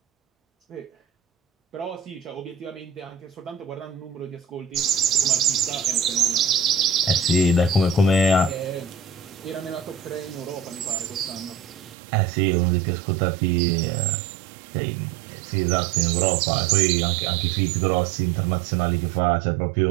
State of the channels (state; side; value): drops out; left; at 12.0 s